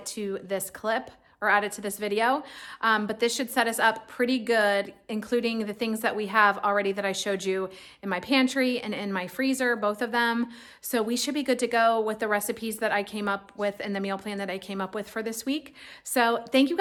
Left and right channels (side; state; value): both; identical; correlation 1.00